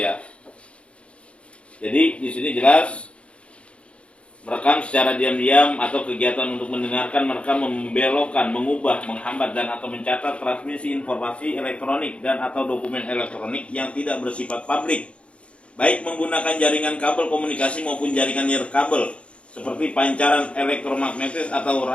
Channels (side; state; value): right; late; 0.060 ms